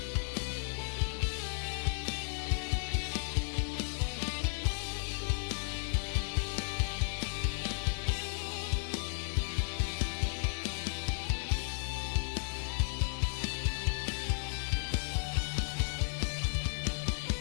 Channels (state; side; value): silent; right; digital silence